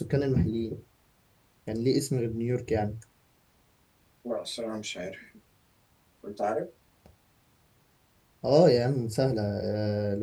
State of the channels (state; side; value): identical; both; correlation 1.00